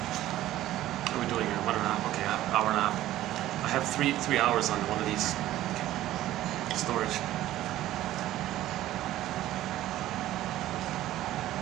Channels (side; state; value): left; quieter; 14.3 dB